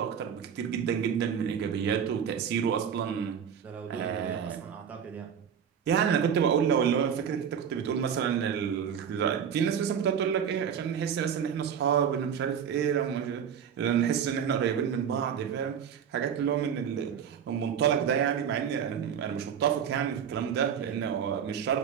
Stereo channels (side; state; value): left; quieter; 8.0 dB